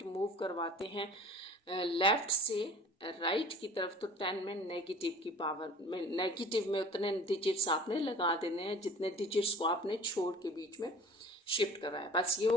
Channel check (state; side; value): normal; both; correlation 0.44